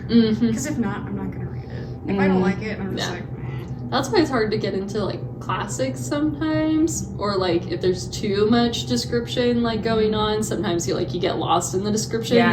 Mm-hmm. Because if not, I'm not gonna read it. If I don't like it, I'm just Yeah. like, That's why it's hard to get into like classics sometimes, or like if there's too much description like going on, sometimes you get lost in the description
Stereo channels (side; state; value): both; identical; correlation 1.00